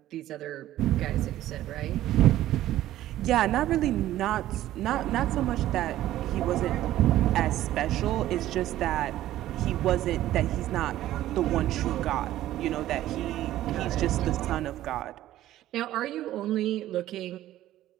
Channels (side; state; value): left; quieter; 13.9 dB